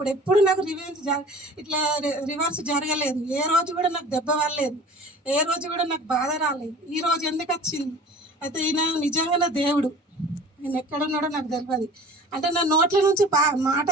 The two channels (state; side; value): normal; both; correlation 0.43